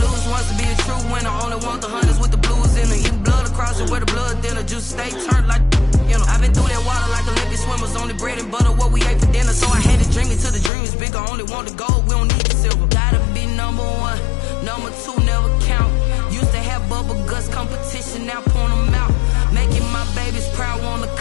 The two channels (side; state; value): right; drops out; at 10.7 s